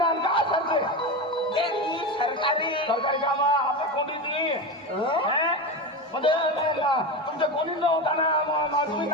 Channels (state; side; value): normal; both; correlation 0.20